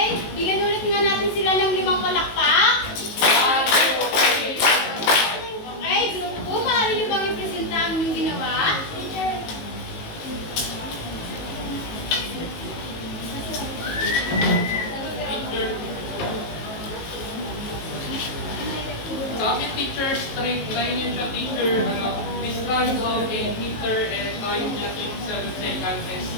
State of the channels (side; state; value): right; late; 19 ms